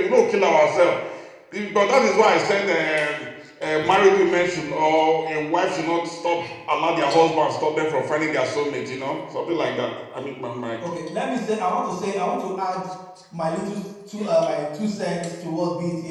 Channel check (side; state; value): both; identical; correlation 1.00